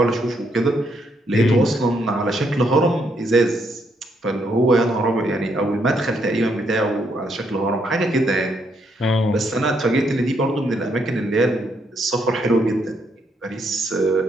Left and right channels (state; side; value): normal; both; correlation 0.75